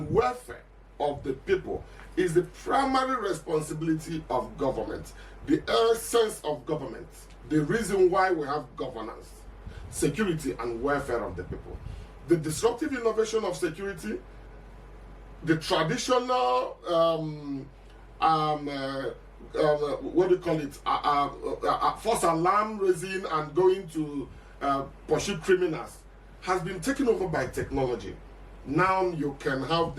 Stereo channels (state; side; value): identical; both; correlation 1.00